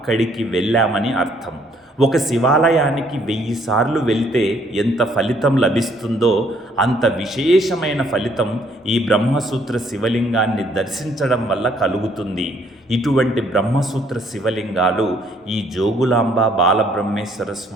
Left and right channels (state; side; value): normal; both; correlation 0.65